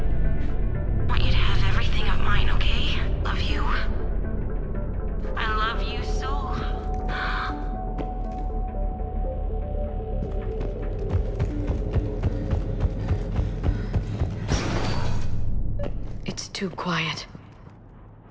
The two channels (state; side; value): identical; both; correlation 1.00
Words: Want you to have everything of mine, okay? Love you. I love you so. It's too quiet.